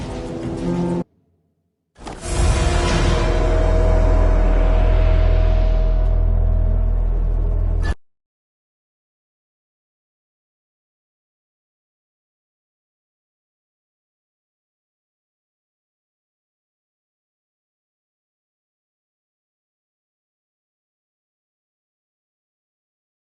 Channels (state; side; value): identical; both; correlation 1.00